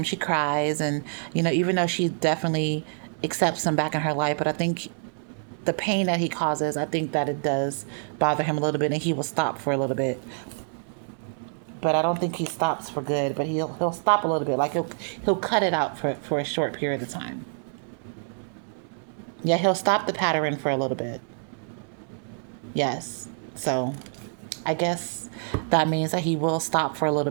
she cries, and, even though she definitely accepts him back in her life, but I think the pain that he causes, I think that it does bother him a little bit, and he will stop for a little bit. But I don't think he stops for good. But he'll stop a little bit. Like he'll cut it out for a short period of time. Yeah, he'll stop the pattern for a little bit. Yes. So I guess that means that he will stop for a little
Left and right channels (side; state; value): left; silent; 60 dB below the other